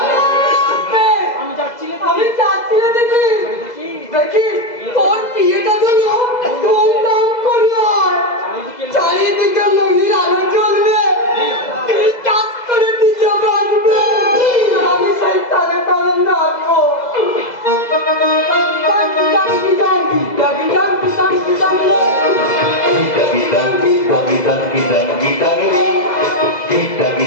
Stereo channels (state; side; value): late; right; 2.0 ms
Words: আমি যাচ্ছি রে দিদি। দেখি তোর বিয়েটা যেন ধুমধাম করে হয়, চারিদিকে মহির আলো জ্বলবে, কাজ করে নিজে বাঁচবে, আমি সেই তালে তালে নাচবো।